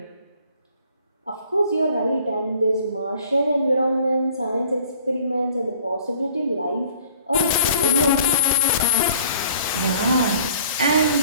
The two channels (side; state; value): both; inverted; correlation -0.53